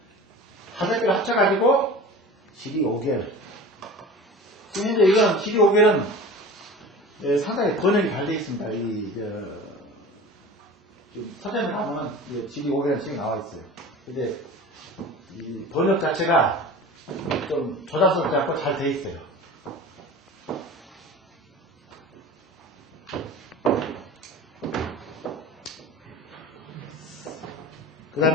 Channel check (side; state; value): both; normal; correlation 0.37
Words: 5개를 합쳐가지고 지리 5개를. 지금 현재 이건 지리 5개는 상당히 번역이 잘 되어 있습니다. 서점에 가면은 지리 5개라는 책이 나와 있어요. 근데 이 번역 자체가 좀 조작스럽지 않고 잘 되어 있어요. 그